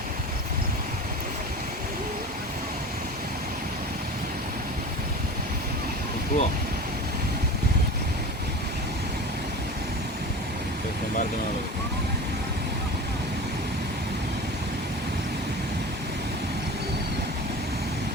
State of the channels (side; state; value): both; normal; correlation 0.33